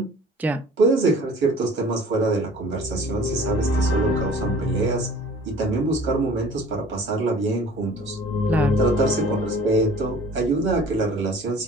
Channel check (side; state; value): both; normal; correlation 0.48